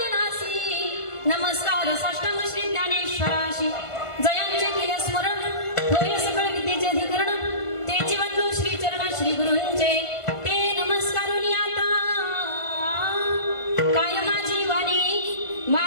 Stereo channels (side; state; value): right; late; 1.5 ms